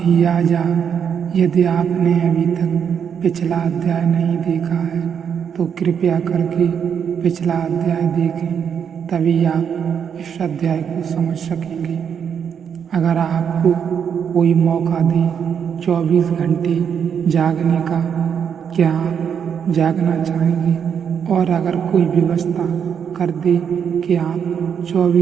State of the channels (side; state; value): left; quieter; 7.6 dB